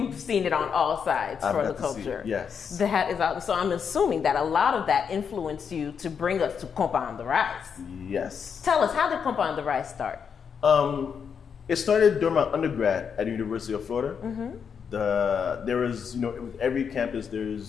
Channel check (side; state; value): right; quieter; 6.8 dB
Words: seen it on all sides for the culture. Yes. That is awesome. So I'm assuming that a lot of that influenced you to bring us to Konpa on the Rise. Yes. Tell us, how did Konpa on the Rise start? It started during my undergrad at the University of Florida. There was, with every campus,